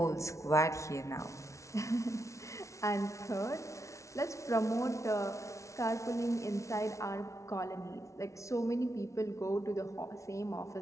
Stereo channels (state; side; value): late; right; 0.14 ms